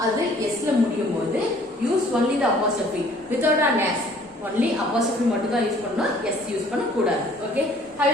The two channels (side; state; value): both; normal; correlation 0.56